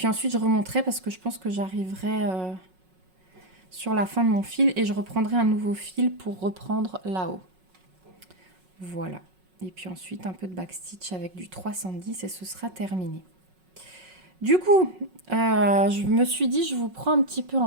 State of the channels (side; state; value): left; late; 5.4 ms